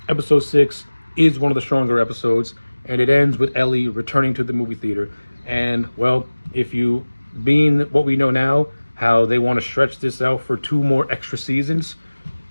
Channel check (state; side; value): inverted; both; correlation -1.00